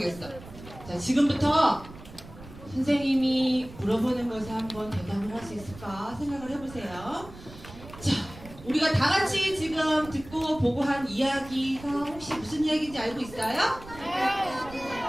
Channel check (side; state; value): right; noise; rumble, 17 dB below the sound